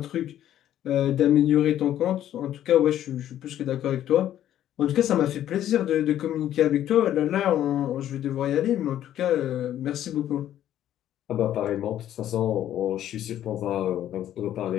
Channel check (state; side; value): quieter; right; 11.7 dB